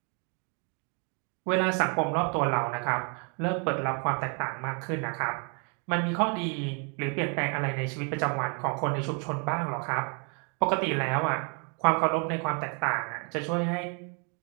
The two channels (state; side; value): quieter; left; 37.5 dB